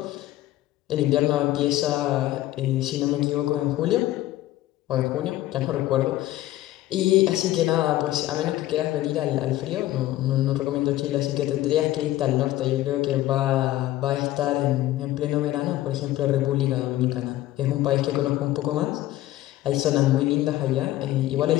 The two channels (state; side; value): quieter; right; 15.1 dB